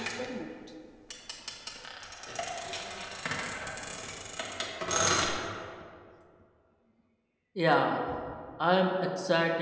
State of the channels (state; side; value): identical; both; correlation 1.00